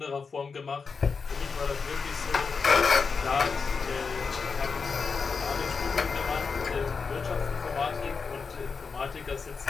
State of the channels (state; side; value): quieter; right; 5.1 dB